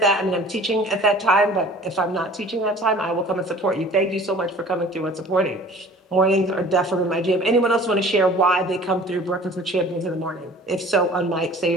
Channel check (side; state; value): both; normal; correlation 0.47